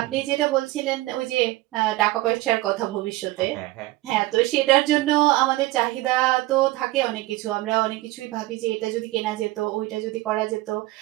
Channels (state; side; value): quieter; left; 18.3 dB